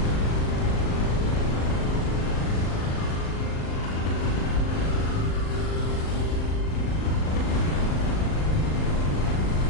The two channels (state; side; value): late; right; 38 ms